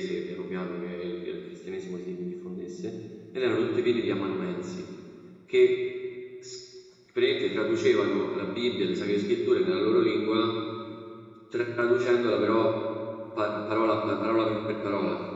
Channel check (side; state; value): both; identical; correlation 1.00